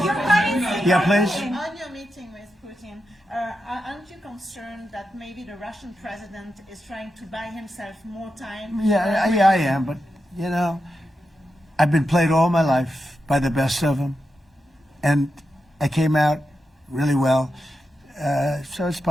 your gut instinct. Yeah, please. On your meeting with Putin, aren't you concerned that maybe the Russian president is trying to buy himself more time? Yeah, I am, but, you know, I've been played all my life by the best of them, and I came out really well, so it's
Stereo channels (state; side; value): normal; both; correlation 0.88